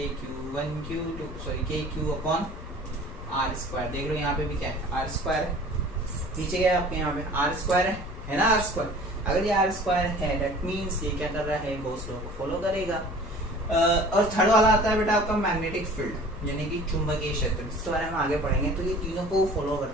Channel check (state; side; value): noise; left; rumble, 11 dB below the sound